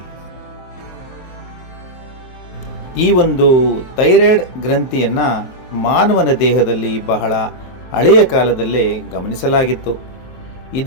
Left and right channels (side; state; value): right; late; 23 ms